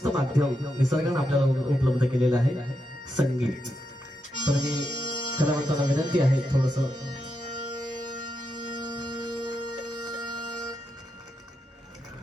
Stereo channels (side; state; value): both; normal; correlation 0.84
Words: माध्यम निसर्गाने आपल्याला उपलब्ध केलेलं आहे, संगीत. तर मी कलावंतांना विनंती आहे थोडस